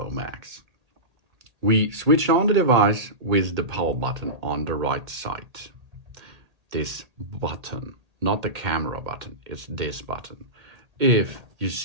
Max. We switch on the device with the power button on the right side. This button, not the camera button, it's this button. If you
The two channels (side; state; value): left; late; 1.8 ms